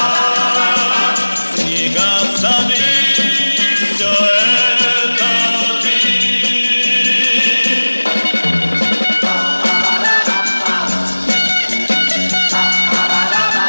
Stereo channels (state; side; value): inverted; both; correlation -1.00